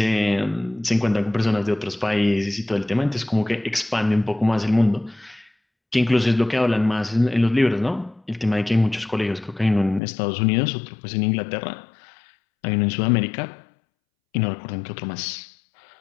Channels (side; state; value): right; drops out; at 10.0 s